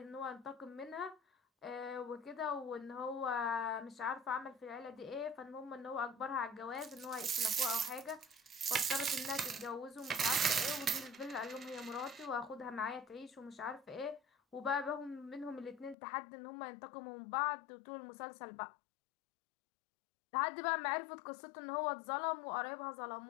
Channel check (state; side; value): drops out; right; at 16.0 s